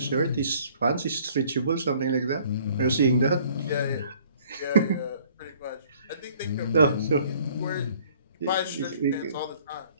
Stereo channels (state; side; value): inverted; both; correlation -0.57